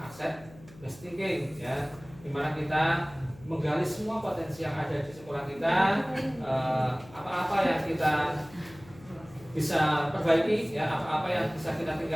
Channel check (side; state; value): left; noise; hum, 21 dB below the sound